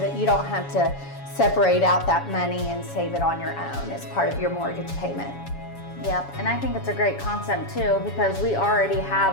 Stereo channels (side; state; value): right; late; 7.2 ms